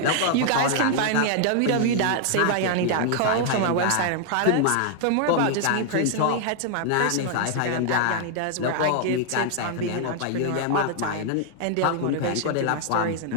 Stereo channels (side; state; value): both; different; correlation 0.00